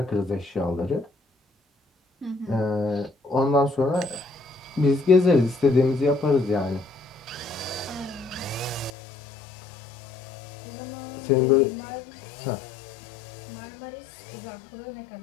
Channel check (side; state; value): right; drops out; at 8.9 s